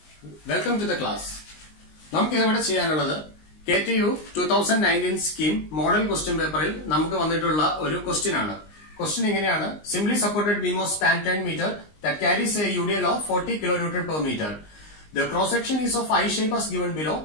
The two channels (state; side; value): late; right; 19 ms